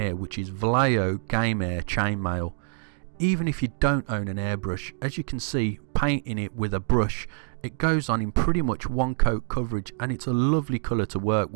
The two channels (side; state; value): left; silent; digital silence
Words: which is Vallejo Game Air Chainmail. Even if you don't own an airbrush, as you can see, painting it with a brush, it goes on in pretty much one coat coverage and it's a lovely colour to work